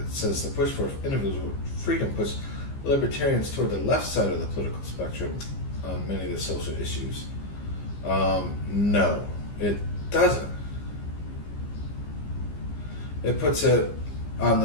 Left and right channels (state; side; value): late; right; 15 ms